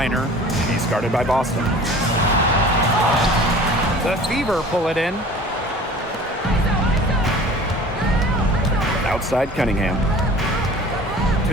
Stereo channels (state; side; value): normal; both; correlation 0.44